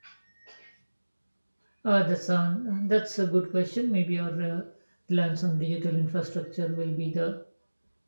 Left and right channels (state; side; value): inverted; both; correlation -1.00